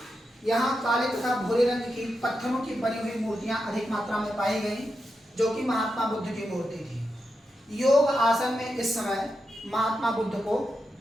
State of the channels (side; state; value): both; normal; correlation 0.87